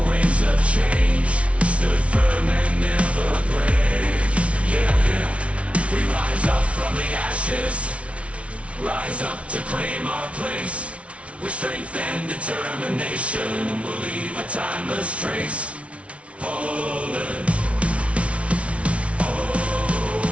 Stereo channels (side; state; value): left; late; 0.062 ms